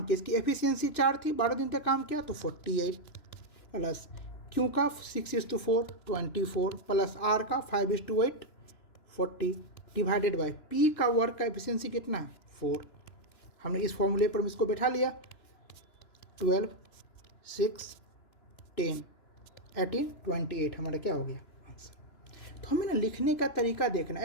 किया, इसकी एफिशिएंसी 4 थी, 12 दिन तक काम किया तो 48 प्लस क्यू का 6:4 24 प्लस आर का 5:8 40 डिवाइडेड बाय पी का वर्क का एफिशिएंसी कितना है? 4। हमने इस फॉर्मूले पर इसको बैठा लिया। 12 6 10 18 28 हमारा क्या हो गया? आंसर। तो हमें ना लिखने का तरीका देखना,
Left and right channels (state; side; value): late; right; 2.9 ms